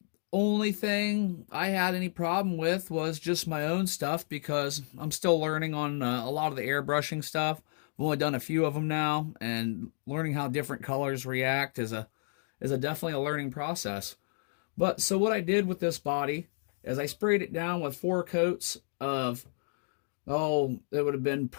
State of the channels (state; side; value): silent; right; digital silence